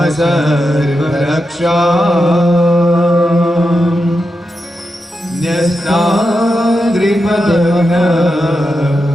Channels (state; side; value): normal; both; correlation 0.88